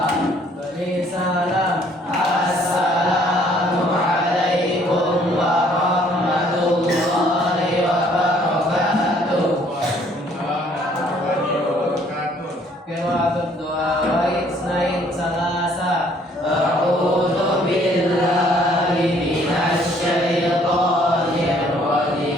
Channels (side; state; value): both; normal; correlation 0.61